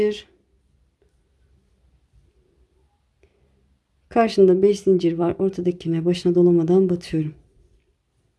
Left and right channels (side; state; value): both; identical; correlation 1.00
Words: Karşında 5 zincir var. Ortadakine başına dolamadan batıyorum.